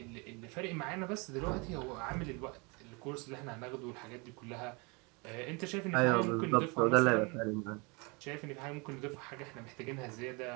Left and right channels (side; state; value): left; quieter; 29.7 dB